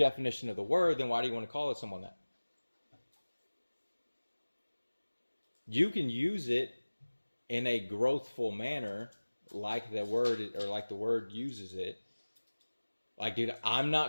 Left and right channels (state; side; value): inverted; both; correlation -1.00